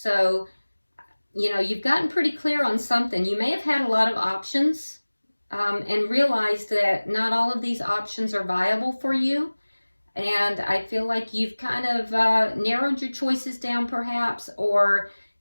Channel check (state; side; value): inverted; both; correlation -1.00